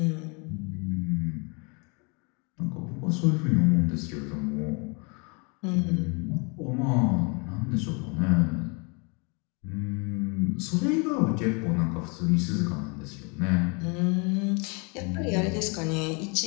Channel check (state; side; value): quieter; right; 32.7 dB